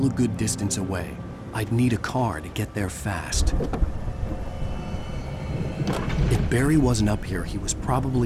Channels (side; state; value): both; identical; correlation 1.00